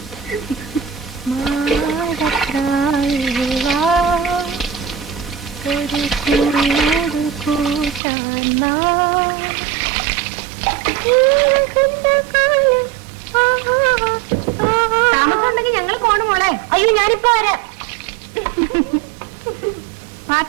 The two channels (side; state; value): left; drops out; at 8.0 s